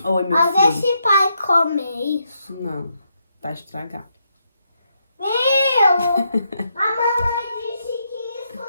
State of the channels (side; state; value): both; inverted; correlation -0.79